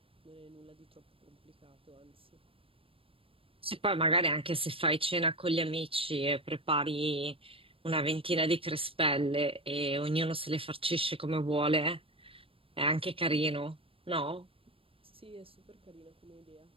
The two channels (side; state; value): left; late; 0.27 ms